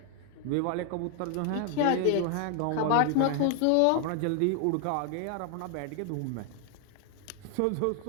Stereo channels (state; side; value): different; both; correlation 0.00